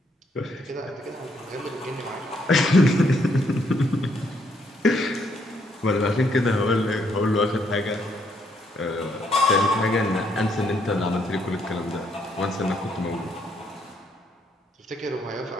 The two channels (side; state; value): both; normal; correlation 0.72